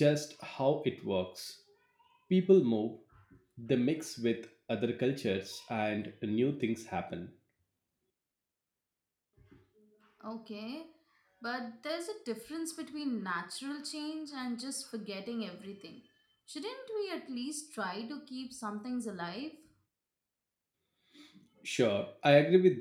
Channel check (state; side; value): identical; both; correlation 1.00